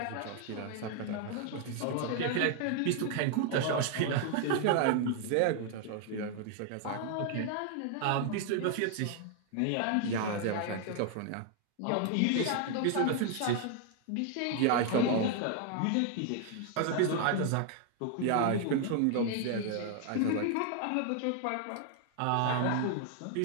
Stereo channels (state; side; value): different; both; correlation 0.00